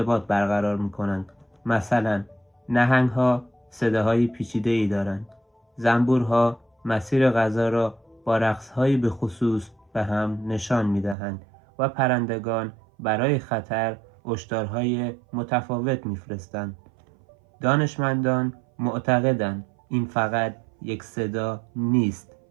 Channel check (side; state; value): left; drops out; at 11.2 s